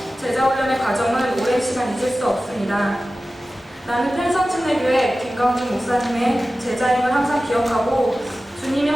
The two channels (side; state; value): both; normal; correlation 0.95